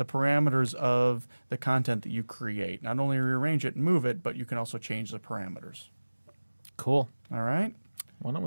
parameters of the content that you create. Not only rearrange it and move it, but you can also change the parameters. Cool. All right? Why don't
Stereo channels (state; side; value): inverted; both; correlation -1.00